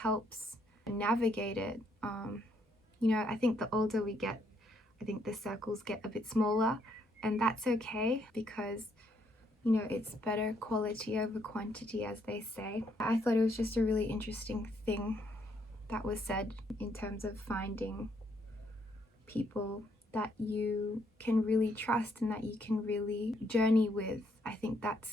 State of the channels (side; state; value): both; normal; correlation 0.72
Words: navigate it. I think the older we get, I think the circles get a bit smaller, and that's okay, because it's better quality over quantity, as they say. I thought it was just a really interesting thing that was said in terms of finding people that you can really trust and that you can really journey with. I think